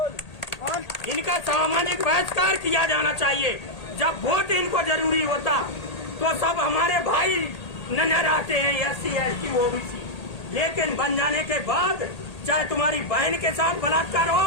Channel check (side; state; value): right; late; 1.8 ms